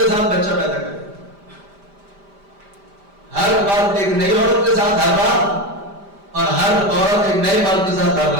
ساتھ بچہ پیدا کرے، ہر مرد ایک نئی عورت کے ساتھ ہر رات، اور ہر عورت ایک نئے مرد کے ساتھ ہر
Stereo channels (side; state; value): left; late; 5.0 ms